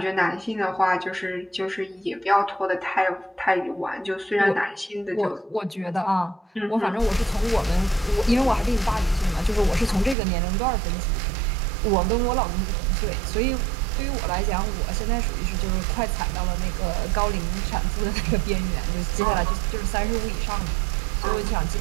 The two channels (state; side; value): drops out; left; at 10.2 s